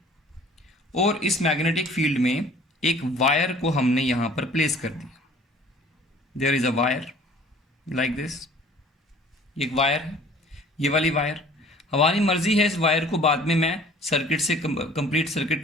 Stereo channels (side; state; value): both; normal; correlation 0.51